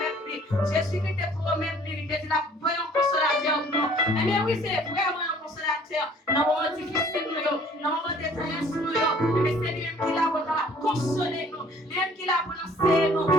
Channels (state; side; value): normal; both; correlation 0.55